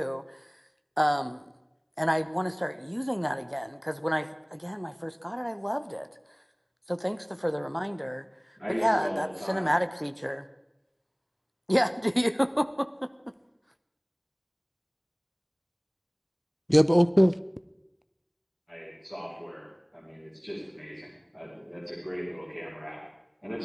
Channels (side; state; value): both; identical; correlation 1.00